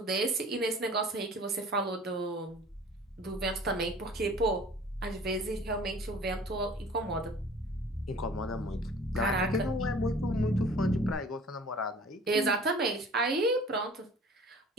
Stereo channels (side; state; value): both; normal; correlation 0.47